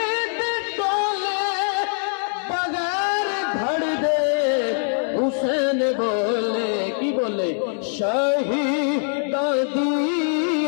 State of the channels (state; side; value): silent; right; digital silence